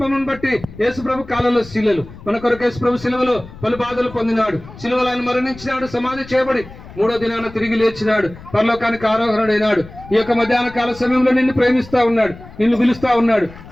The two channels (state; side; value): noise; left; rumble, 17 dB below the sound